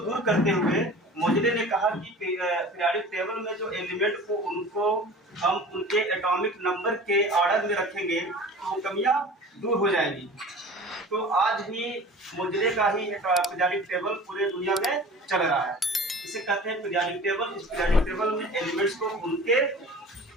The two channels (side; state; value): both; normal; correlation 0.40